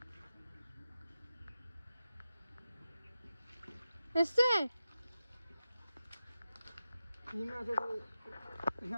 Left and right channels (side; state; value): both; inverted; correlation -0.92